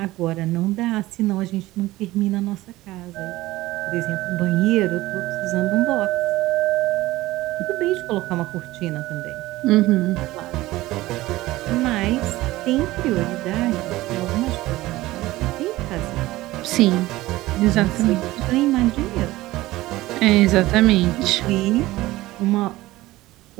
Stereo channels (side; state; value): left; quieter; 17.8 dB